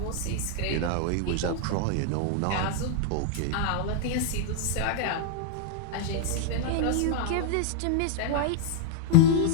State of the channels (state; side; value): different; both; correlation 0.00